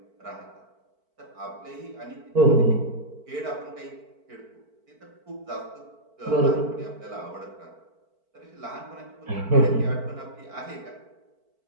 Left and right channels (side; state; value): left; late; 4.5 ms